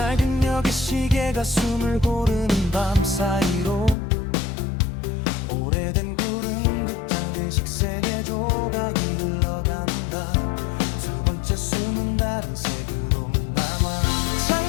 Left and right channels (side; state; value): right; drops out; at 4.0 s